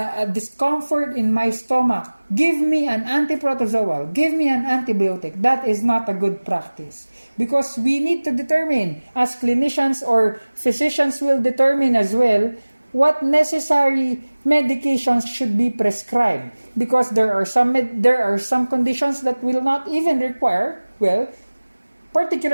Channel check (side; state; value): both; inverted; correlation -1.00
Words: discomfort in my stomach. Give me an antiprotozoal. Give me an antibiotic. That is not a good practice. Because we need to determine, as clinicians or physicians will determine as well, what necessary medications should be prescribed, because there are some conditions that will not even require